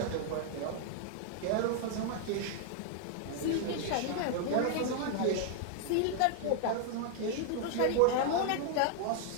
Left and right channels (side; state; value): both; different; correlation 0.00